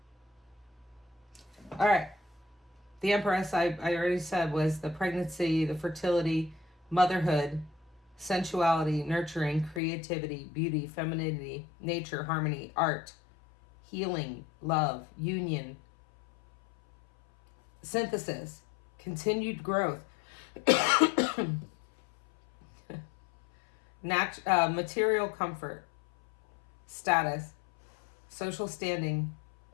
All right. The Empress, I already said, was the pregnancy, the fertility, motherhood, sensuality, nurturing, creativity, beauty, femininity, nature, harmony, art, healing, love, union, synthesis, continued growth, material comfort, status, social standing,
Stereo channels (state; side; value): drops out; right; at 9.8 s